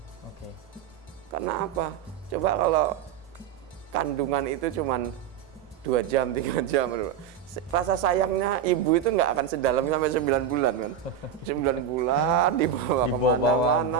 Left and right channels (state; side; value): quieter; left; 8.3 dB